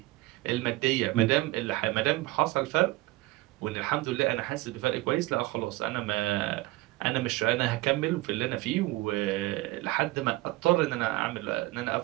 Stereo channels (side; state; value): left; quieter; 19.8 dB